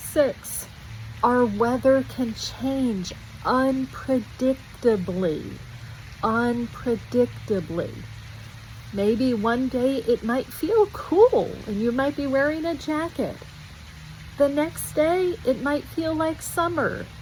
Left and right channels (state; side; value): identical; both; correlation 1.00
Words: our weather can change unpredictably. Maybe one day it might feel cool and you might be wearing a jacket. The next day it might feel like summer.